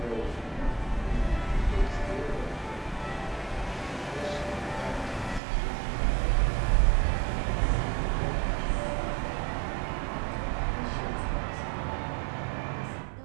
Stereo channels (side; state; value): left; drops out; at 5.4 s